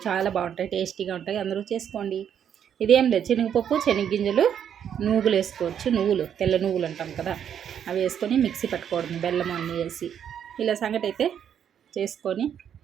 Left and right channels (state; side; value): quieter; left; 8.8 dB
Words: చాలా బాగుంటాయి, టేస్టీగా ఉంటాయి, అందరూ చేసుకోండి. ఇదేం లేదు, శనగపప్పు, శనగగింజలు, నువ్వులు వేసుకోవచ్చు. తెల్ల నువ్వులు అంటాం కదా, అవి వేసుకొని మిక్సీ పట్టుకోవడం, బెల్లం అన్నీ వేసి ఇలా సంగటి అయితే చేసుకొని